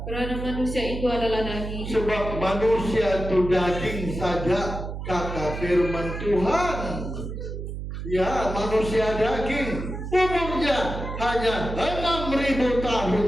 karena manusia itu adalah daging. Sebab manusia itu daging saja, kata firman Tuhan. Ya, manusia daging. Umurnya hanya 6.000 tahun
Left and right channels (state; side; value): noise; right; hum, 6 dB below the sound